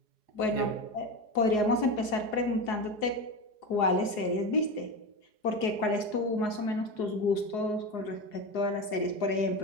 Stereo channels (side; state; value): right; late; 4.8 ms